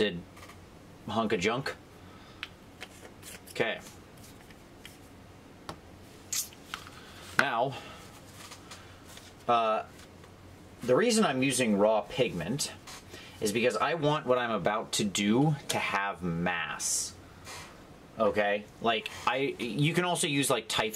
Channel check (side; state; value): both; identical; correlation 1.00